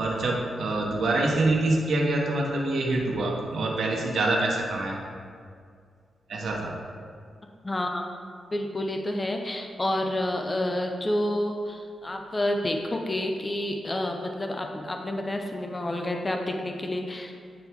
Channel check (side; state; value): both; normal; correlation 0.87